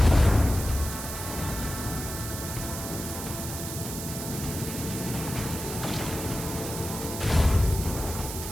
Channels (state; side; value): noise; right; hiss, 7 dB below the sound